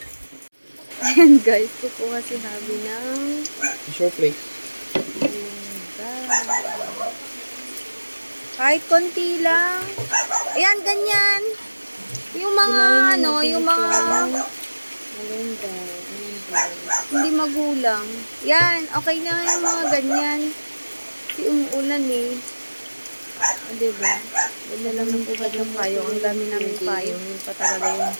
Ayan guys, kukuha si Habi ng Tissue plate. kahit konti lang. Ayan, ganyan. Yung mga yung mga Malunggay. hindi magulang. Yan, okay na yung mga ganyan. Kasi umuulan eh. O, diba? Ganda lang ng pugad ng payong. Ang dami namin payong. Yun pa talaga yung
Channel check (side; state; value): both; inverted; correlation -1.00